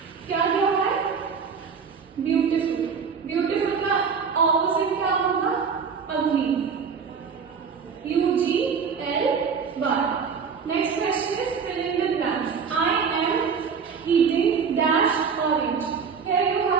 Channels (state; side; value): quieter; left; 6.1 dB